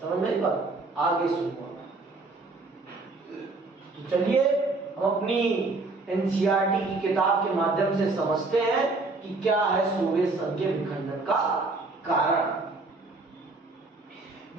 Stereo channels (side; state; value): left; quieter; 3.5 dB